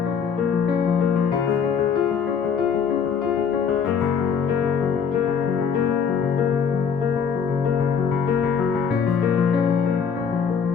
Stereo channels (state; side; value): quieter; right; 6.7 dB